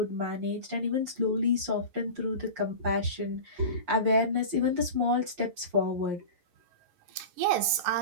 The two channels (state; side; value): late; left; 11 ms